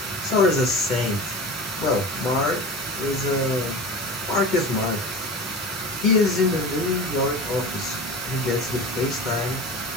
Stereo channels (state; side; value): normal; both; correlation 0.32